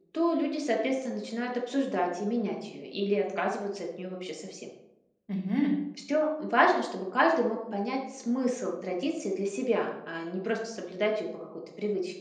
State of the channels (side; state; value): both; identical; correlation 1.00